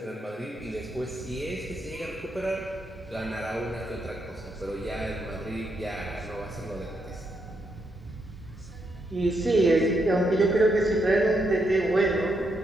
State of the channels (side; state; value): both; normal; correlation 0.79